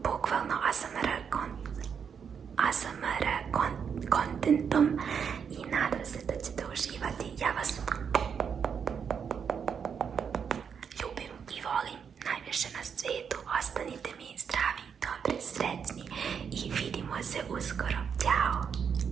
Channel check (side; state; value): left; quieter; 7.0 dB